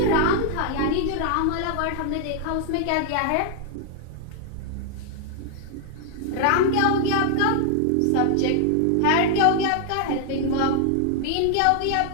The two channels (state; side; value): different; both; correlation 0.00